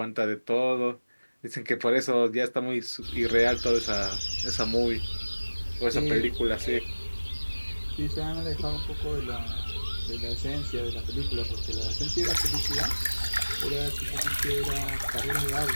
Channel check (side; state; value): both; inverted; correlation -1.00